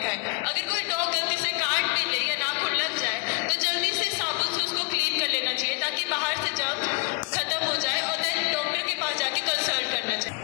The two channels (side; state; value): right; quieter; 30.0 dB